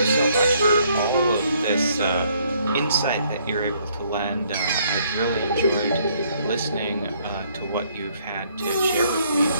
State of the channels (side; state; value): both; inverted; correlation -0.67